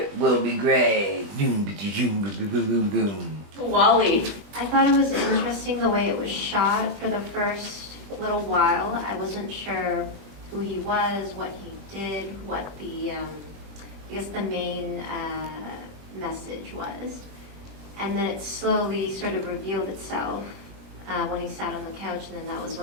will be gray. WALLY. I thought it was interesting the way it was shot for the first little while. I wasn't sure who he was, what he did, what the, I guess the main message was. And then it slowly sort of revealed itself when he sat on the couch, and then that was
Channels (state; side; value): late; left; 20 ms